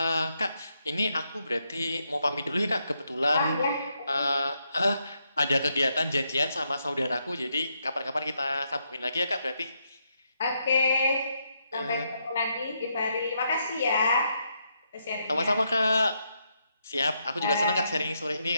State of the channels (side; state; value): both; inverted; correlation -0.80